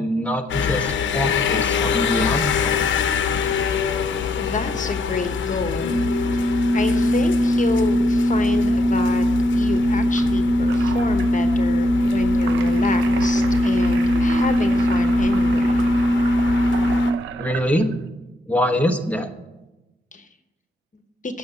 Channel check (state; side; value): normal; both; correlation 0.77